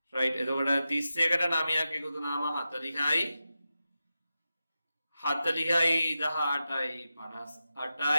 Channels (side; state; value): both; inverted; correlation -0.91